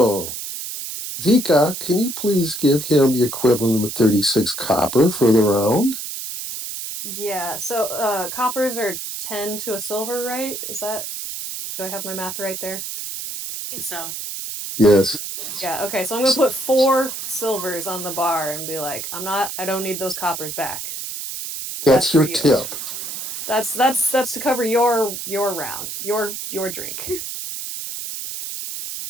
Vika, can you please give him the equivalent of 36 copper for the round? Yeah. So coppers are 10 to a silver, right? Is that, do I have my math right there? I think so. Yes, Yeah, okay. So I'm gonna put 4 silvers on the bar and be like, I don't need those coppers back. That's that's for your you. tip. That's to cover your round, your drink.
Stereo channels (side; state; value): right; noise; hiss, 7 dB below the sound